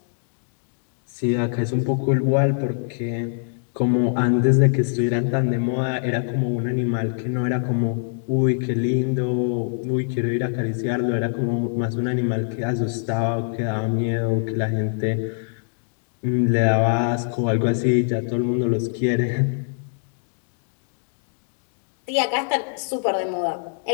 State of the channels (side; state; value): right; silent; digital silence